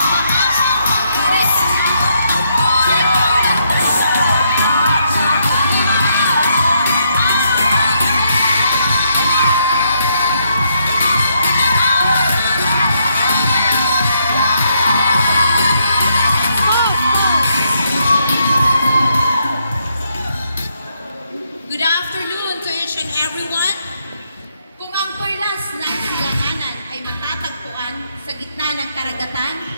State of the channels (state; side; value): inverted; both; correlation -0.75